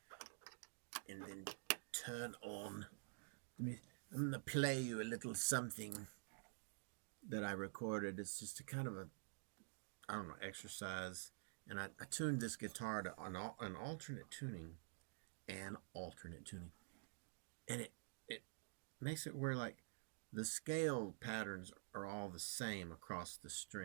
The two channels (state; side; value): silent; left; digital silence